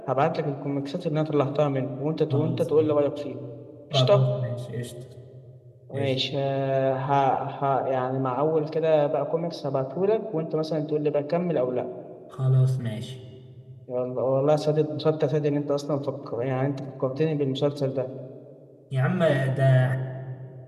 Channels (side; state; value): both; identical; correlation 1.00